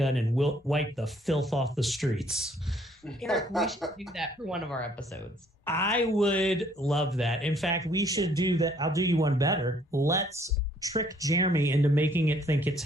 and wipe the filth off the streets? Eric, we should do that for one of our episodes. I would love that. In fact, we should do that. I'll do you one better. Let's trick Jeremy into making it think it's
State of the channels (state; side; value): normal; both; correlation 0.63